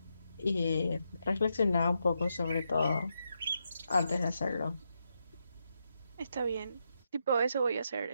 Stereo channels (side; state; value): both; inverted; correlation -0.83